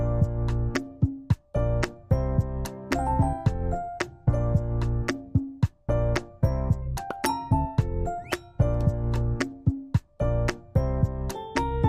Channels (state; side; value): identical; both; correlation 1.00